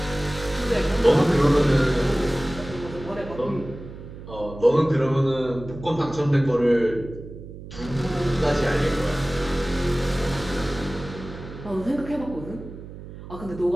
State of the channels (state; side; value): noise; right; hum, 14 dB below the sound